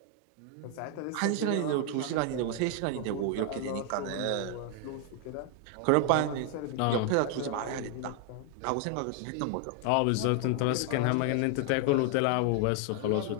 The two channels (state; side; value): different; both; correlation 0.00